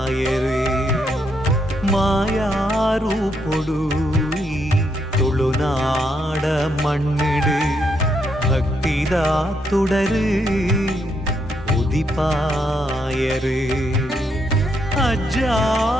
ಮಾಯಾರೂಪೊಡು ಈ ತುಳುನಾಡ ಮಣ್ಣಿಡು ಭಕ್ತಿದ ತುಡರು ಉದಿಪಾಯರು ಅಜ್ಜ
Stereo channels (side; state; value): both; normal; correlation 0.77